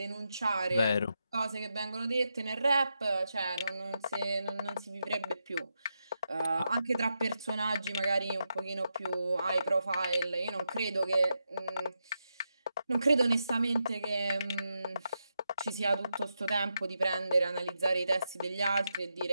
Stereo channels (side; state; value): both; inverted; correlation -0.86